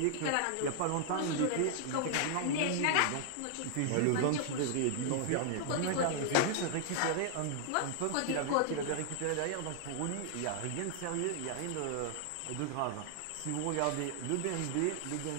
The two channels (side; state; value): both; different; correlation 0.00